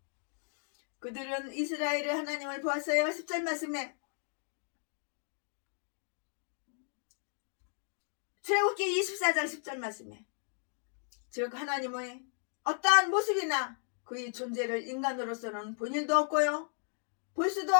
그들은 이스라엘의 하나님을 보았어요. 10절 말씀에 출애굽기 24장 10절 말씀에 즉 하나님의 어떠한 모습이나 그의 존재를 인간으로서는 본 일도 없고요 볼 수도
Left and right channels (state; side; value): silent; right; 55 dB below the other